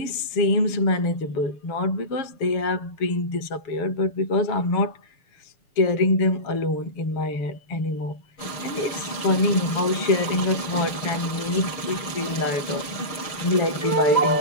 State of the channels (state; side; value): late; right; 6.6 ms